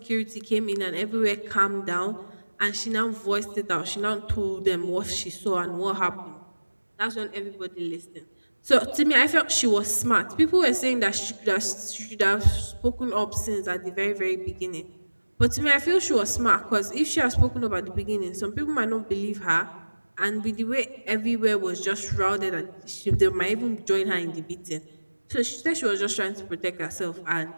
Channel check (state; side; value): inverted; both; correlation -1.00